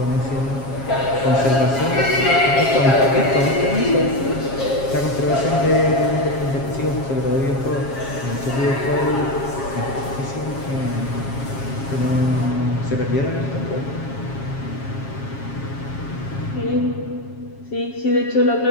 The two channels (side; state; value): right; late; 7.4 ms